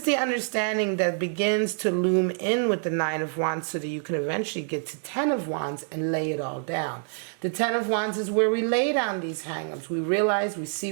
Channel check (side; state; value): left; silent; 61 dB below the other